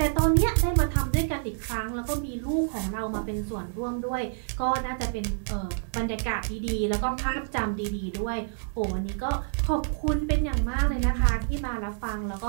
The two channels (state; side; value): silent; left; digital silence